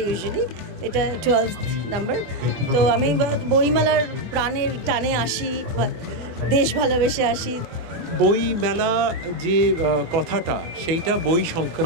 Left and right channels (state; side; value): late; left; 24 ms